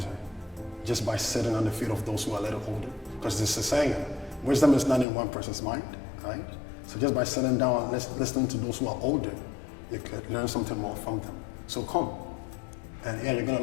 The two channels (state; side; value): drops out; right; at 5.1 s